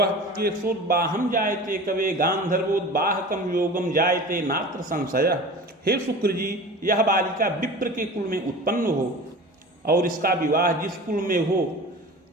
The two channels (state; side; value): normal; both; correlation 0.36